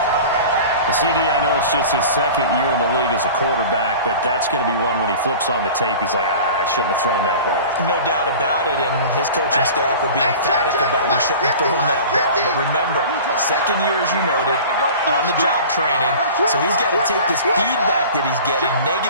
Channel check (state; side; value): inverted; both; correlation -0.39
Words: CD, I know it's just his 2nd year in the league as a quarterback, but that's going to be one when he flips on the tape. He's like, I shouldn't have thrown that ball. No doubt about it, and his coaching staff will be emphatic about he shouldn't have thrown that ball. But remember, 2nd year, as you noted, on-the-job training, so he's got to take this feedback that he's getting,